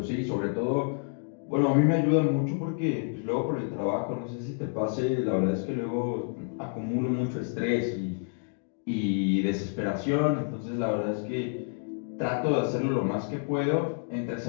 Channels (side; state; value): right; silent; 59 dB below the other